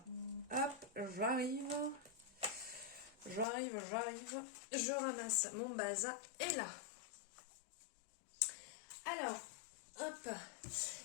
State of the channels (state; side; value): drops out; right; at 3.5 s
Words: Hop, j'arrive. Je ramasse mon bazar et là. Alors, hop.